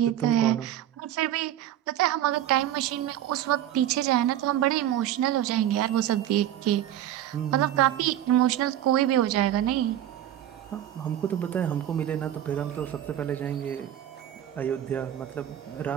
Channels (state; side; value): quieter; left; 11.7 dB